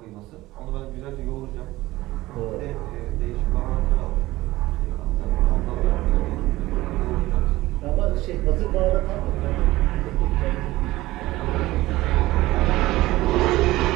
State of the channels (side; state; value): left; quieter; 17.8 dB